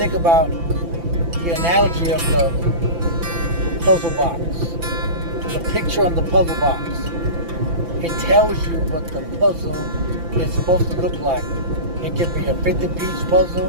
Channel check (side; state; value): left; late; 5.9 ms